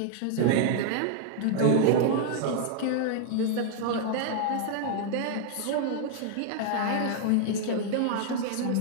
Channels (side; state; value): both; different; correlation 0.00